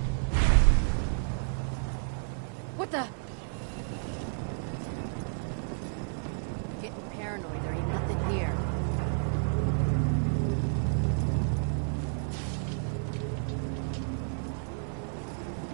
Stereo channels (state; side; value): silent; left; 57 dB below the other